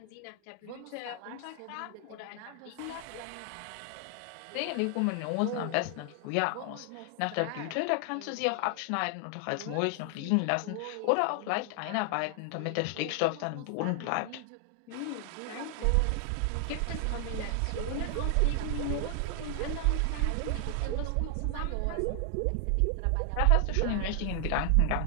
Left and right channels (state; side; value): different; both; correlation 0.00